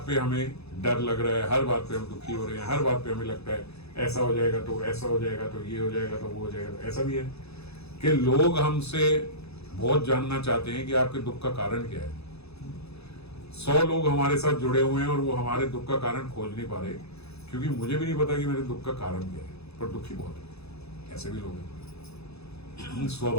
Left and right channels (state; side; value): late; right; 0.79 ms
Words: पे हमें डर लग रहा है, हर बात पे हम दुखी हो रहे हैं, हर बात पे हमें लगता है ऐसा हो जाएगा तो ऐसा हो जाएगा, तो ये हो जाएगा तो वो हो जाएगा। तो ऐसा भी है कि लोग हमसे बहुत जानना चाहते हैं कि आपके दुख का कारण क्या है। 100 लोग हमारे साथ जुड़े हुए हैं और वो हमारे दुख का कारण खोज नहीं पा रहे, क्योंकि मुझे भी नहीं पता कि मेरे दुख का कारण क्या है, पर दुखी बहुत है। ऐसे भी लोग हैं,